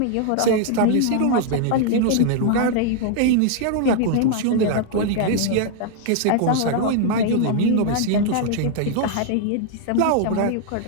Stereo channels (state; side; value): different; both; correlation 0.00